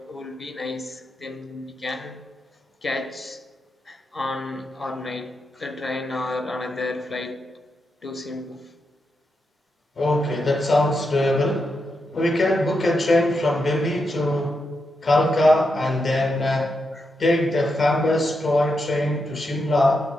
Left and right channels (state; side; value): normal; both; correlation 0.85